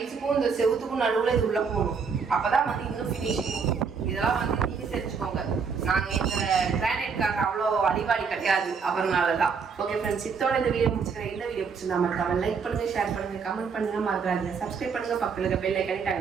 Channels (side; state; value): left; quieter; 5.7 dB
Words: இந்த செவுத்துக்கும் நடுவில் இது உள்ள போகணும். அப்பதான் வந்து இன்னும் ஃபினிஷிங். இதெல்லாம் வந்து நீங்க தெரிஞ்சுக்கோங்க. நாங்க இந்த கிரானைட்காக அவ்வளோ அடிவாடி கிடையாது, அவர்னாலதான். ஓகே ஃப்ரெண்ட்ஸ், இதோட இந்த வீடியோ முடிச்சுக்கிறேன். இந்த வீடியோ பிடிச்சிருந்தா மறக்காம லைக் பண்ணுங்க, ஷேர் பண்ணுங்க, கமெண்ட் பண்ணுங்க, மறக்காதீங்க சப்ஸ்கிரைப் பண்ணுங்க, பக்கத்துல பெல் ஐகானை